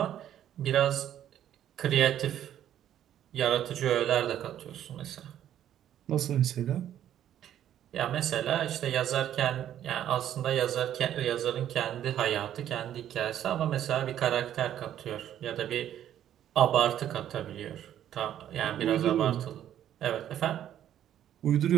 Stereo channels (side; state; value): left; quieter; 11.0 dB